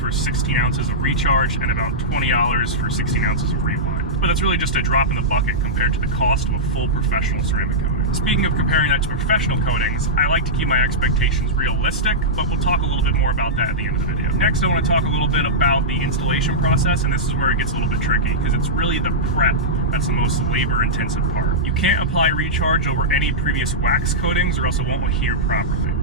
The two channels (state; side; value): normal; both; correlation -0.12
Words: 16 ounces of Recharge and about $20 for 16 ounces of Rewind. But that's really just a drop in the bucket compared to the cost of a full professional ceramic coating. Speaking of comparing that to professional coatings, I like to keep my expectations realistic, but we'll talk a little bit more about that at the end of the video. Next, I want to talk a little bit about the installation process, and this is where it gets a little bit tricky, because it's really the prep that's the most labor-intensive part. You can't apply Recharge over any previous wax coatings or else it won't adhere properly.